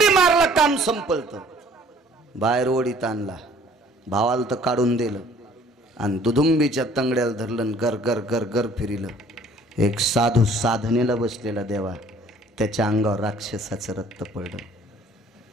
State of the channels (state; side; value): normal; both; correlation 0.55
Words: मारला, काम संपलत. बाहेर ओढीत आणला, भावाला तर काढून दिलं आणि दुधुंबीच्या तंगड्याला धरलं, गर गर गर गर फिरिलं. एक साधू साधनेला बसलेला देवा, त्याच्या अंगावर राक्षसाचं रक्त पडलं.